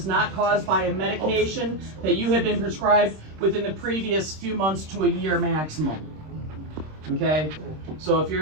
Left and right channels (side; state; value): left; late; 26 ms